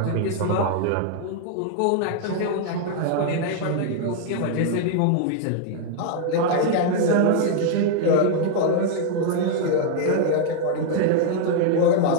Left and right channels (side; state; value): both; different; correlation 0.00